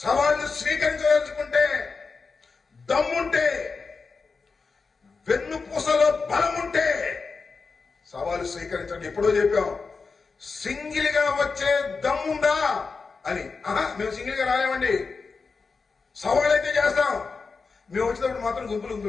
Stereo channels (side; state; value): right; quieter; 4.6 dB